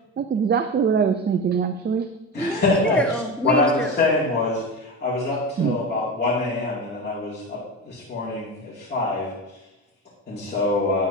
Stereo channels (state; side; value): normal; both; correlation 0.23